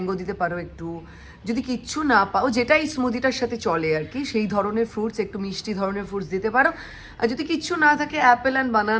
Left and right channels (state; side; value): identical; both; correlation 1.00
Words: দিতে পারো একটু, যদি কিচ্ছু না পাও যেটা এই স্মুদিটার সাথে চলে আর কি, সেই ধরনের ফ্রুটস, একটু মিষ্টি ধরনের ফ্রুটস দিতে পারো। আর যদি কিচ্ছু না থাকে অ্যাপেল অ্যান্ড